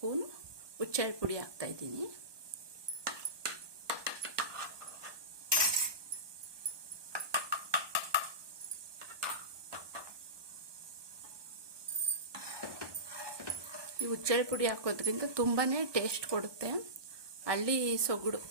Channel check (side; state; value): left; late; 1.2 ms